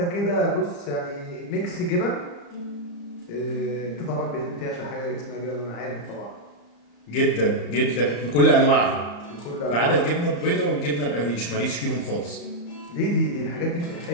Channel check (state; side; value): late; right; 35 ms